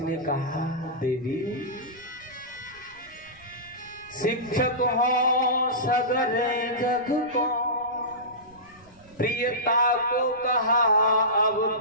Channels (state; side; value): noise; right; rumble, 27 dB below the sound